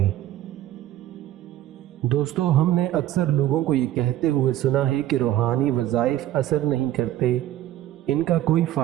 दोस्तों, हमने अक्सर लोगों को ये कहते हुए सुना है कि रूहानी वज़ाइफ असर नहीं करते, इनका कोई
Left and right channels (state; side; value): quieter; left; 13.2 dB